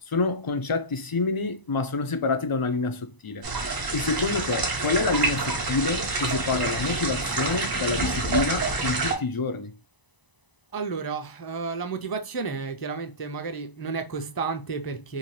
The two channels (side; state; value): right; late; 1.0 ms